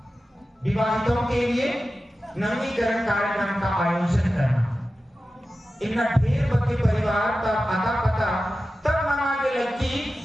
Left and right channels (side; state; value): both; normal; correlation 0.94